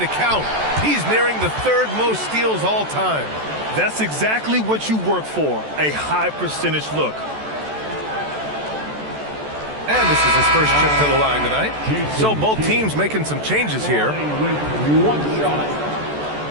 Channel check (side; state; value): left; late; 14 ms